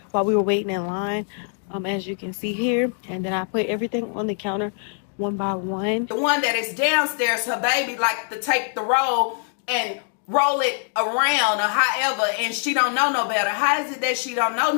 while we were waiting in line, as you can see here. And then I put everything on the counter one by one. The one that is downstairs, her baby like to take the roll and roll it around or however, and she don't know no better. How is it that she don't know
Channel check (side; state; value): right; silent; 62 dB below the other